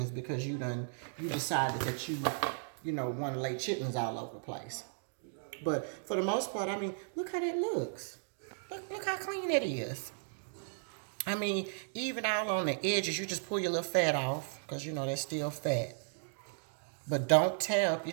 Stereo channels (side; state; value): left; silent; digital silence